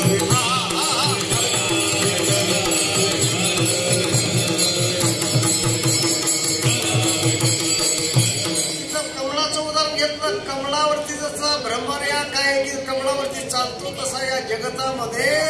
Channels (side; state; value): both; identical; correlation 1.00